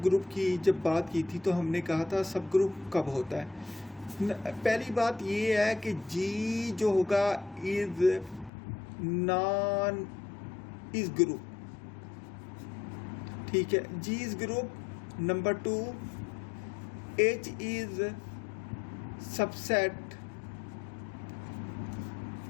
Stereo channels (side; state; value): right; drops out; at 8.5 s